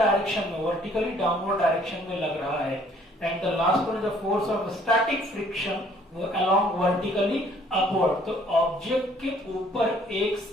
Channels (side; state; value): both; normal; correlation 0.60